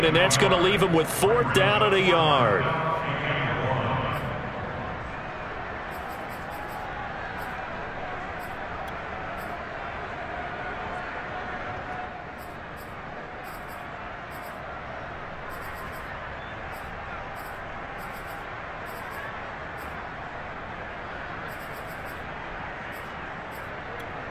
and that's going to leave him with 4th down at a yard.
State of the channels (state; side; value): identical; both; correlation 1.00